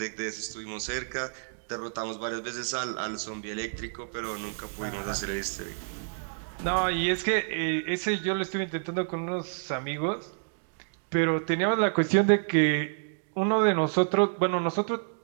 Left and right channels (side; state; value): left; silent; digital silence